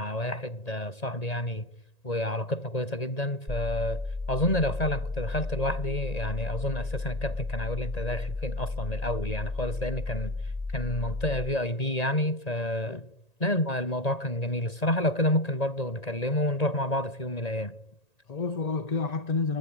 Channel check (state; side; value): late; right; 1.9 ms